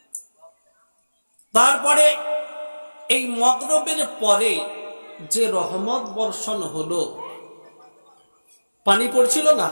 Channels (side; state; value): both; inverted; correlation -1.00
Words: তারপরে এই মগরবের পরে যে রহমত বর্ষণ হলো, পানি পড়ছিল না,